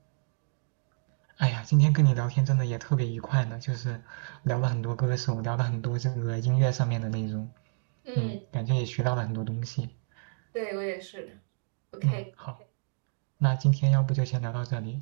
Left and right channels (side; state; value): left; silent; digital silence